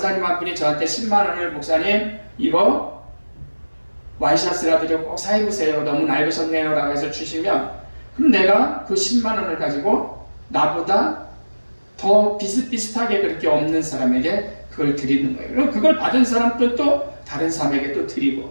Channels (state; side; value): inverted; both; correlation -1.00